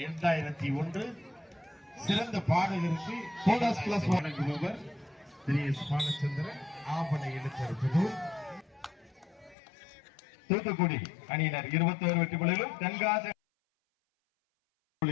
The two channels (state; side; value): drops out; right; at 9.6 s